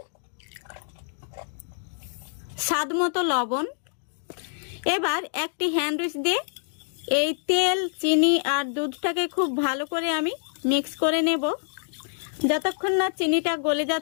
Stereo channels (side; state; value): right; silent; digital silence